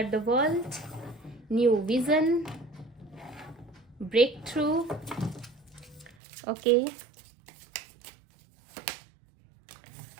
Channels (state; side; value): drops out; left; at 6.2 s